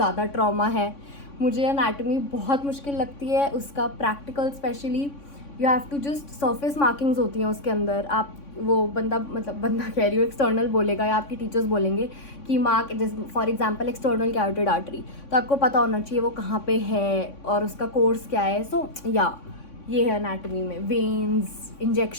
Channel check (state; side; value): late; right; 3.6 ms